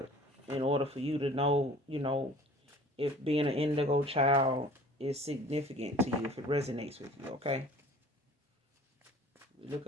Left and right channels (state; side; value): normal; both; correlation 0.47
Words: in order for you to know, if being an indigo child is significant to you, if it resonates with you, okay? We look